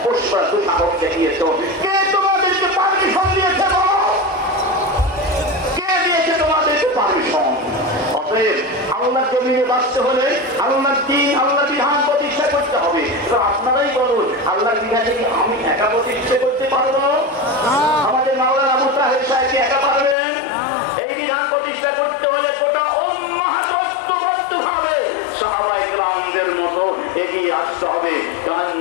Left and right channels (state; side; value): drops out; right; at 20.2 s